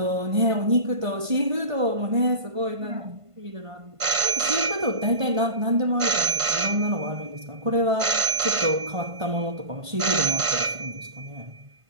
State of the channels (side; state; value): left; late; 1.5 ms